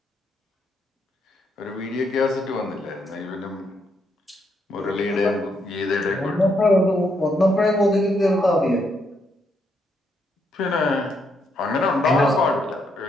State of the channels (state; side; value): normal; both; correlation 0.76